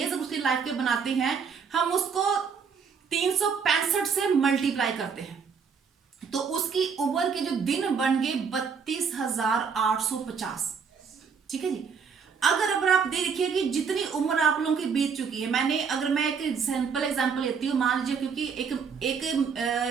उसकी लाइफ के बनाते हैं, हम उसको 365 से मल्टीप्लाई करते हैं, तो उसकी उम्र के जो दिन बन गए 32,850। ठीक है जी। अगर आप देखिए कि जितनी उम्र आप लोगों की बीत चुकी है, अगर मैं एक सिंपल एग्जांपल लेती हूँ, मान लीजिए, क्योंकि एक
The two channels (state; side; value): quieter; left; 6.1 dB